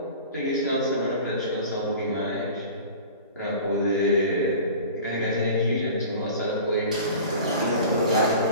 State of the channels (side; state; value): both; inverted; correlation -0.40